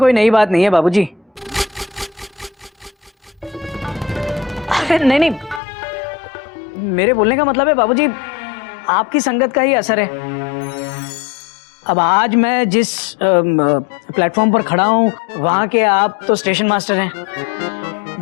नई बात नहीं है बाबूजी। अरे नहीं नहीं, मेरे बोलने का मतलब है बाबूजी, आपकी संगत का ही असर है। अब आज मैं जिस प्लेटफॉर्म पर खड़ा हूँ, वहाँ के आप तो स्टेशन मास्टर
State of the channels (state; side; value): drops out; right; at 5.6 s